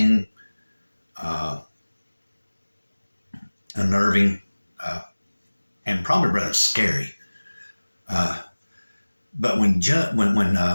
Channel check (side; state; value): both; inverted; correlation -1.00